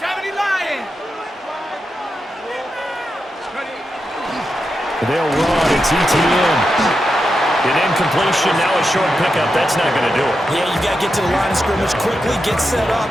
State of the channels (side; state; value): both; normal; correlation 0.88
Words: Lions. They'll run. It's ETN. An incompletion, now a short pickup. That's not going to do it. Yeah, you got to get to the line of scrimmage quickly, get set up,